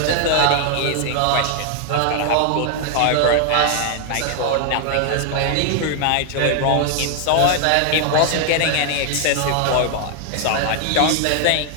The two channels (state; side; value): different; both; correlation 0.00